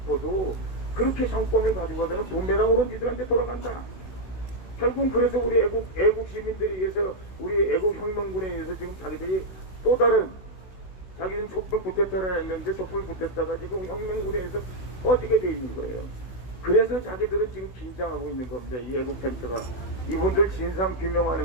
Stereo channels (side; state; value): right; late; 16 ms